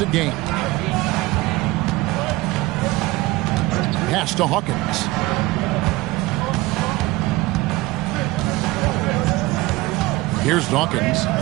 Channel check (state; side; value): quieter; left; 20.1 dB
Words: game. Pass to Hawkins. Here's Dawkins.